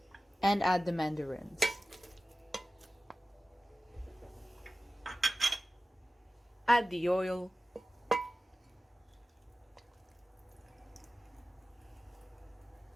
and add the mandarins. Add the oil,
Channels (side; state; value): both; normal; correlation 0.96